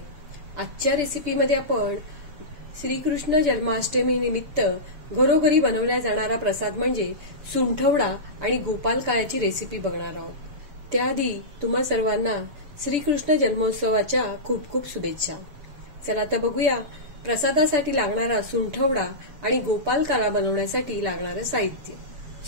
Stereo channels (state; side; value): late; left; 6.8 ms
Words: आजच्या रेसिपीमध्ये आपण श्रीकृष्ण जन्माष्टमी निमित्त घरोघरी बनवल्या जाणारा प्रसाद म्हणजे सुंठवडा आणि गोपाल काळ्याची रेसिपी बघणार आहोत। त्याआधी तुम्हा सर्वांना श्रीकृष्ण जन्मोत्सवाच्या खूप खूप शुभेच्छा। चला तर बघूया प्रसादासाठी लागणारा सुंठवडा आणि गोपाल काळा बनवण्यासाठी लागणारं साहित्य।